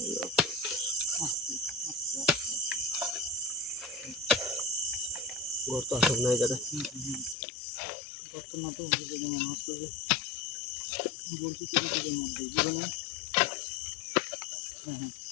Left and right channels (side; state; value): right; drops out; at 7.4 s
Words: ঘর তো আসল না এই জায়গায়। বর্তমান তো মনে হচ্ছে যে বলছি কিছুর মধ্যে জীবনে। হ্যাঁ